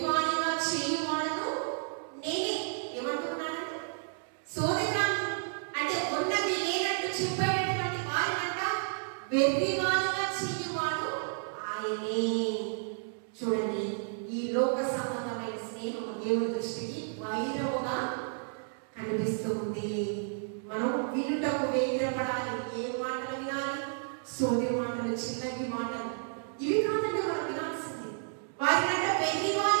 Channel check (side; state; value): left; silent; 57 dB below the other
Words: చేయువాడను నేనే. ఏమంటున్నానండి? సోదెగాళ్ళు అంటే ఉన్నది లేనట్టు చెప్పేటటువంటి వారినంట వెర్రివానిగా చేయువాడు ఆయనే. చూడండి, ఈ లోక సంబంధమైన స్నేహం దేవుని దృష్టికి వైరముగా కనిపిస్తూ ఉంది. మనం వినుటకు వేగిరపడాలి. ఏ మాటలు వినాలి? సోది మాటలు, చిల్లంగి మాటలు, ఇవి కాదండి మనం వినాల్సింది. వారినంట